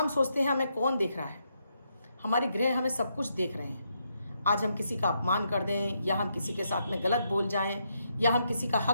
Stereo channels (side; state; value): both; inverted; correlation -0.79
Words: सोचते हैं हमें कौन देख रहा है, हमारे ग्रह हमें सब कुछ देख रहे हैं। आज हम किसी का अपमान कर दें या हम किसी के साथ में गलत बोल जाएं या हम किसी का